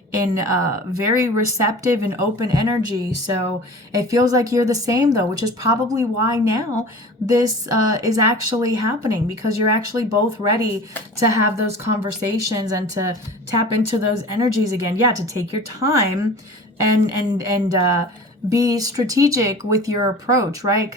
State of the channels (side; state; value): both; normal; correlation 0.39